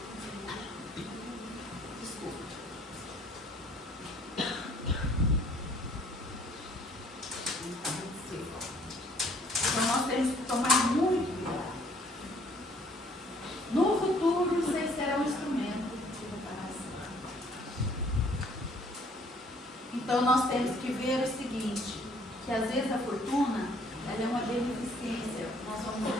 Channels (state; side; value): normal; both; correlation 0.60